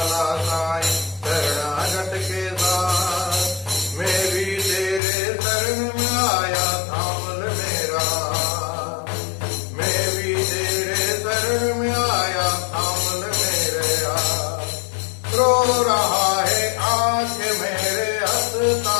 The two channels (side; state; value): right; drops out; at 5.0 s